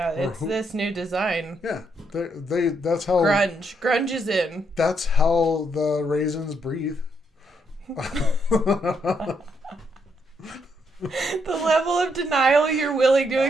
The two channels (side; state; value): both; normal; correlation 0.76